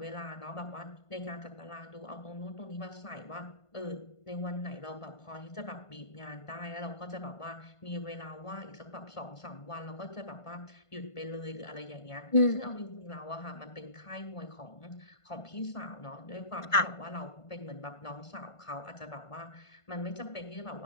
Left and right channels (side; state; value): right; late; 1.5 ms